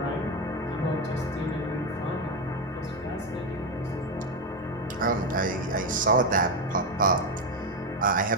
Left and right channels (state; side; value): normal; both; correlation 0.09